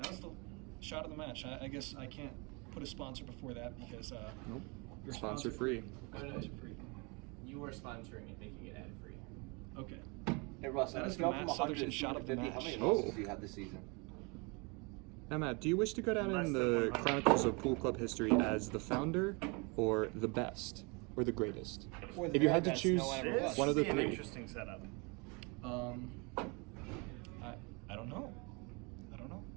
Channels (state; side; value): quieter; left; 30.2 dB